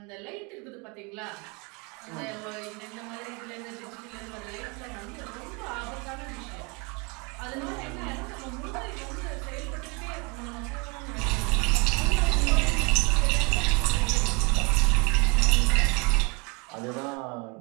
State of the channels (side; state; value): left; quieter; 30.5 dB